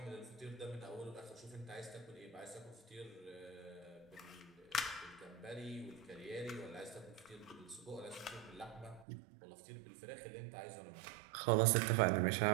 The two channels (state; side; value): drops out; left; at 9.1 s